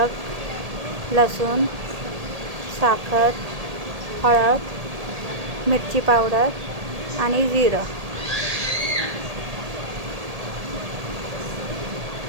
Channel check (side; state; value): left; late; 1.8 ms